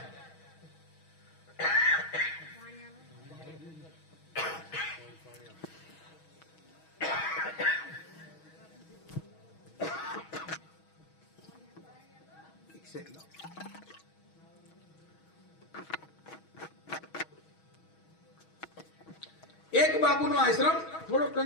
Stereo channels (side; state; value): right; late; 6.3 ms